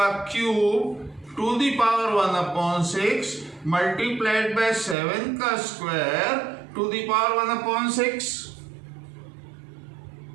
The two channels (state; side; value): drops out; left; at 5.0 s